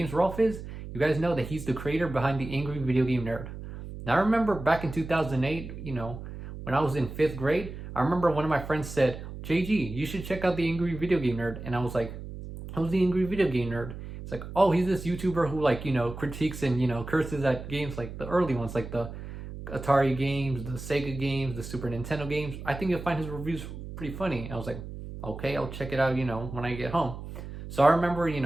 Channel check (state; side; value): noise; right; hum, 10 dB below the sound